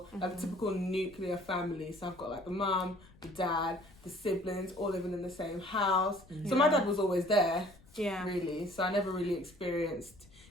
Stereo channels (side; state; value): left; noise; rumble, 25 dB below the sound